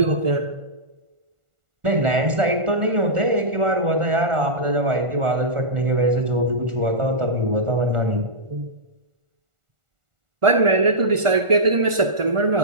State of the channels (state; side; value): late; left; 1.4 ms